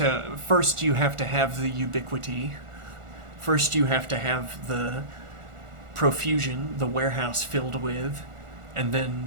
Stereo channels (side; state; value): left; late; 1.4 ms